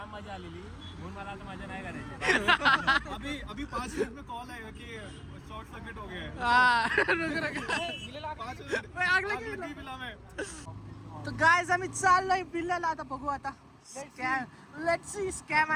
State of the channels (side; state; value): both; identical; correlation 1.00